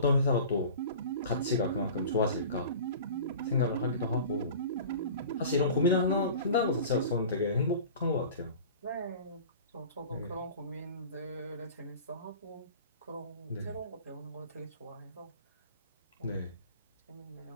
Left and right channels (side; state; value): both; inverted; correlation -0.39